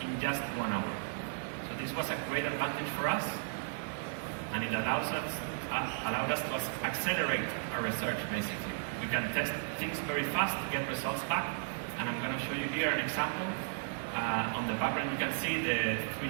just 1 hour. So this was a great advantage for us, and it allowed us to accelerate our research, basically. We can test things very fast to get results back, and I'm going to show you here an example. On the background, you can see the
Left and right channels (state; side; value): silent; left; digital silence